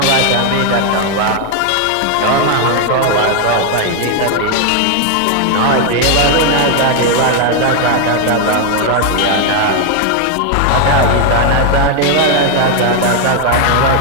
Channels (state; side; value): different; both; correlation 0.01